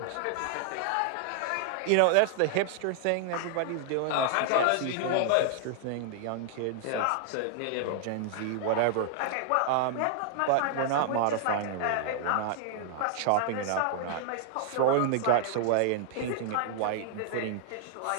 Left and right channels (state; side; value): different; both; correlation -0.01